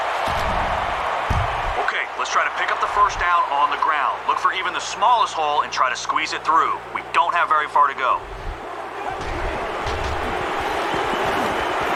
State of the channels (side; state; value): both; identical; correlation 1.00